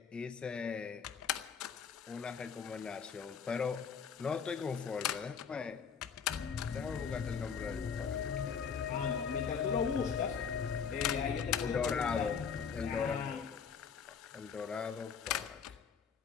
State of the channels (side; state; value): right; quieter; 6.6 dB